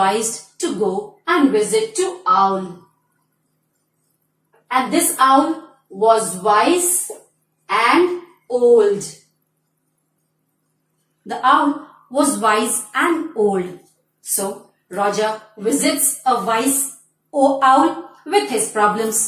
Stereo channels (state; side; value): identical; both; correlation 1.00